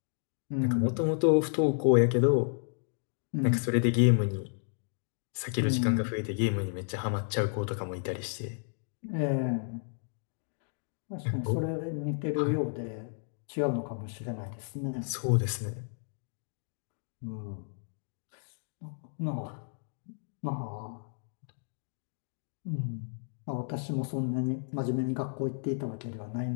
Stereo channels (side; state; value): right; silent; digital silence